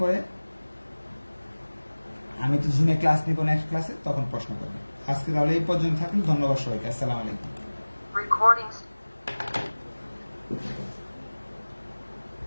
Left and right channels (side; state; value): both; inverted; correlation -1.00